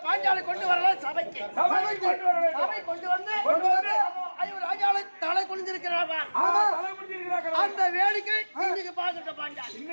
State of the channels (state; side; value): inverted; both; correlation -1.00